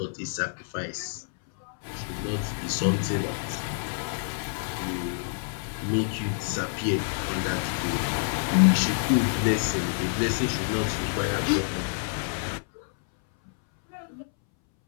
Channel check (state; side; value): silent; right; 60 dB below the other